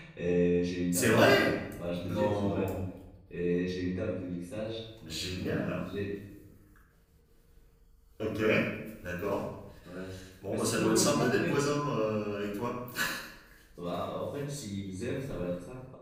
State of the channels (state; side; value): identical; both; correlation 1.00